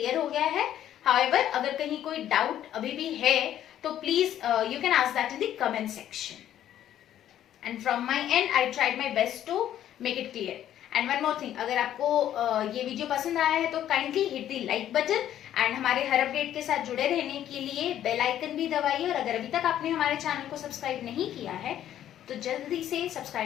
हो गया है। हाउएवर अगर कहीं कोई डाउट अभी भी है तो please you can ask that in the comment section, and from my end I tried my best to make it clear. And one more thing, अगर आपको ये वीडियो पसंद आया है तो kindly hit the like button, and हमारे हर update के साथ जुड़े रहने के लिए बेल आइकन भी दबाइए। और अगर अभी तक आपने हमारे चैनल को सब्सक्राइब नहीं किया है तो जल्दी से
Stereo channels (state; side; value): quieter; right; 11.3 dB